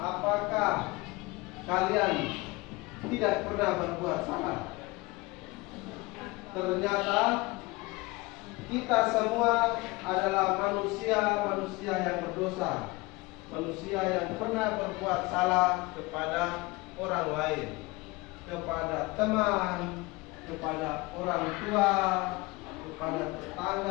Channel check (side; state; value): right; quieter; 23.0 dB